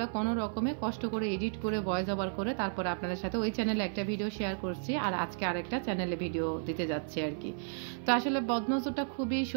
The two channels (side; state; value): left; silent; 56 dB below the other